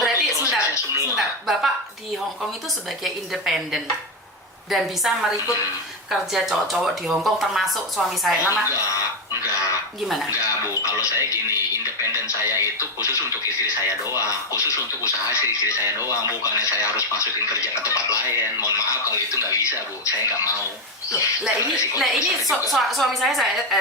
berarti prosesnya semua. sebentar. Bapak di Hong Kong itu sebagai independen dan bisa merekrut kerja cowok-cowok di Hong Kong termasuk suami saya. Nama Enggak. gimana? Enggak, Bu. Kalau saya gini, independen saya itu khusus untuk istri saya doang, khusus untuk usaha istri saya doang, bukannya saya harus masukin kerja ke tempat lain. Mohon maaf kalau itu nggak bisa, Bu. Saya nggak mau. Lah ini suami saya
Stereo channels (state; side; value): normal; both; correlation 0.07